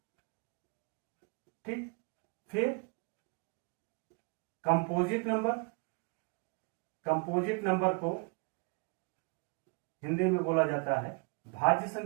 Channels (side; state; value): left; quieter; 34.1 dB